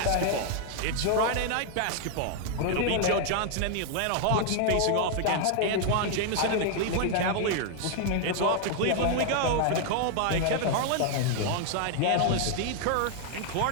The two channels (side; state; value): both; different; correlation 0.00